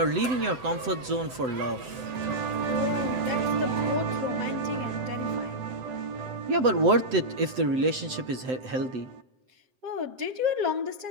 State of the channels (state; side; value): late; left; 7.9 ms